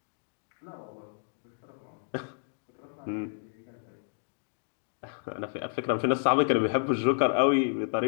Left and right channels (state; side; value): silent; right; digital silence